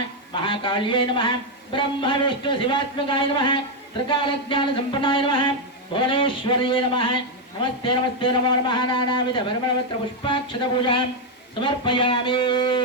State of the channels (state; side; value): normal; both; correlation 0.03